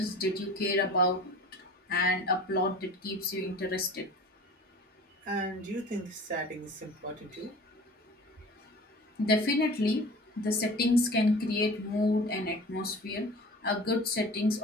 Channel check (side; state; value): both; normal; correlation 0.41